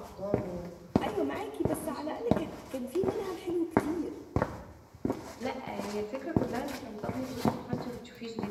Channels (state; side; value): identical; both; correlation 1.00